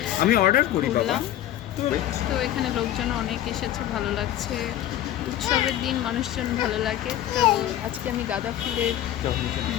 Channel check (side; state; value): right; quieter; 12.4 dB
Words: আমি অর্ডার করি বাবা। ঘুরলাম। তো এখানে লোকজন অনেক এসেছে, ভালো লাগছে। উৎসবের দিন মানুষজন ভালো লাগে। তো আজকে আমি গাঁদা ফুলের